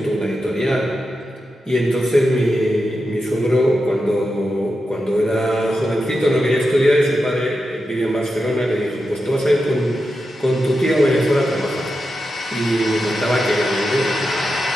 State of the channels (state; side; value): normal; both; correlation 0.89